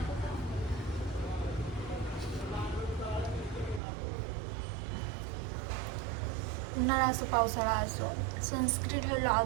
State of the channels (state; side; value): drops out; left; at 3.8 s